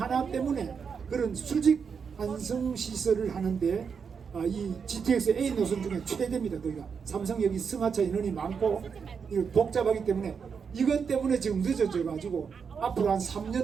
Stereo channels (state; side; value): quieter; left; 6.2 dB